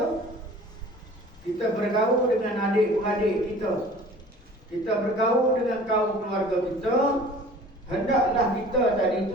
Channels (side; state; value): both; normal; correlation 0.46